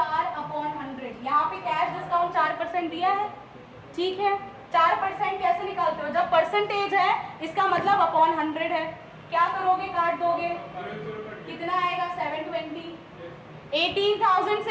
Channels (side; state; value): both; identical; correlation 1.00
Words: यहाँ पे कैश डिस्काउंट 4% दिया है। ठीक है, 4% कैसे निकालते हो? जब परसेंटेज है इसका मतलब अपॉन 100 है। क्या करोगे? काट दोगे। कितना आएगा? 720। 18,000